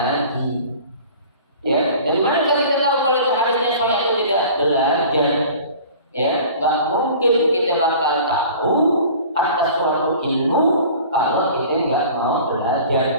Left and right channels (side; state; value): both; inverted; correlation -0.44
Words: Ya, dari mana Ustaz kita tahu kalau itu hadisnya sahih atau tidak? Belajar. Ya, nggak mungkin kita bakal tahu atas suatu ilmu kalau kita nggak mau belajar,